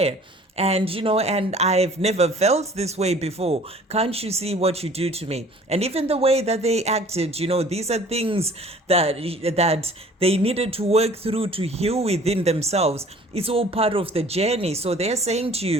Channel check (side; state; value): both; normal; correlation 0.50